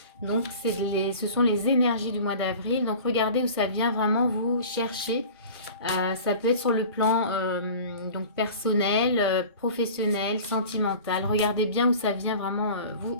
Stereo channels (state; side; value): inverted; both; correlation -0.40